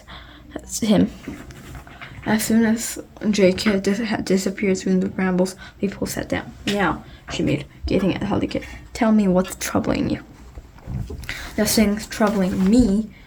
him. As soon as Jake had disappeared through the brambles, Leafpool sat down. Now, she made, gazing at Holly Kit. Tell me what's troubling you. Nothing's troubling me,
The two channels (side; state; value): both; identical; correlation 1.00